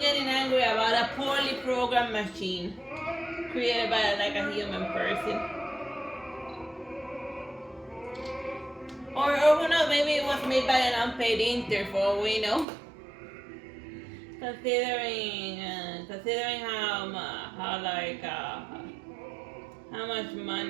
angry about a poorly programmed machine created by like a human person. Or who knows, maybe it was made by an unpaid intern for all we know. Considering how much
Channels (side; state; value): left; drops out; at 12.7 s